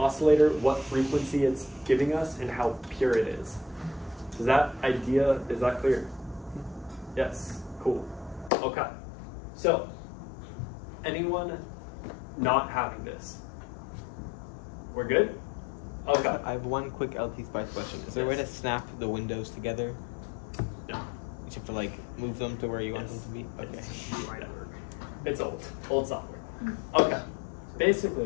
what frequency it's giving us, and how pure it is. Is that clear? Yes, cool. Okay. So, anyone not having this? We're good? Okay. I have one quick LTspice question. Is there a way to snap the windows together? No. You have to like move them to where you want them to be? Okay. Yeah. It's old software. Okay,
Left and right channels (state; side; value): drops out; right; at 8.5 s